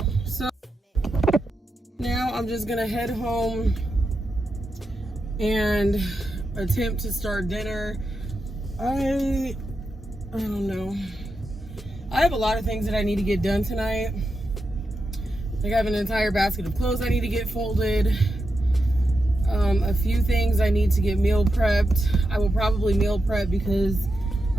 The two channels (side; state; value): both; normal; correlation 0.87